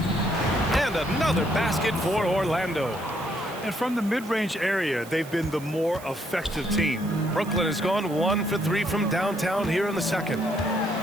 And another basket for Orlando. And from the mid-range area, they've been the more effective team. Brooklyn has gone 1 for 3 from downtown here in the second.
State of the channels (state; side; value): noise; right; hiss, 19 dB below the sound